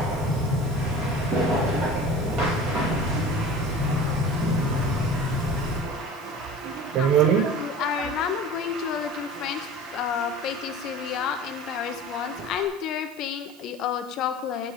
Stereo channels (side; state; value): right; noise; hiss, 24 dB below the sound